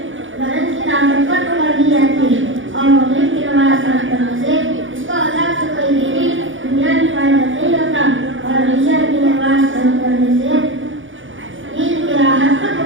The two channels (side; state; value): left; late; 0.57 ms